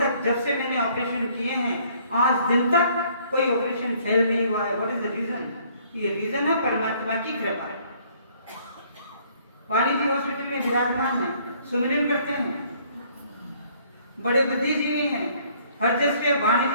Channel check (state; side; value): inverted; both; correlation -0.62